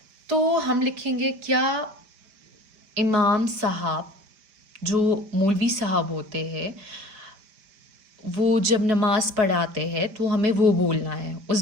तो हम लिखेंगे क्या इमाम साहब, जो मौलवी साहब होते हैं, वो जब नमाज पढ़ाते हैं तो हमें वो बोलना है, उस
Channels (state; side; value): late; left; 5.0 ms